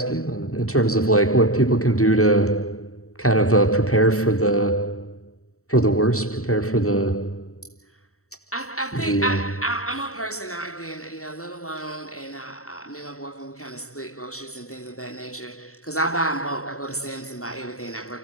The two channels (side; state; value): right; late; 0.64 ms